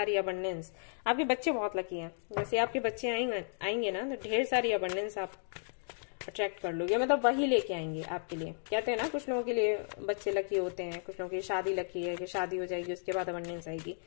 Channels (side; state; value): right; silent; digital silence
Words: अबंडेंस, आपके बच्चे बहुत लकी हैं, जैसे आपके बच्चे आएंगे ना तो ढेर सारी अबंडेंस आप अट्रैक्ट कर लोगे, मतलब वही लेके आएंगे आपके लिए। कहते हैं ना कुछ लोगों के लिए बच्चे लकी होते हैं, कुछ लोगों की शादी लकी है कि शादी हो जाएगी उसके बाद अबंडेंस आएगी,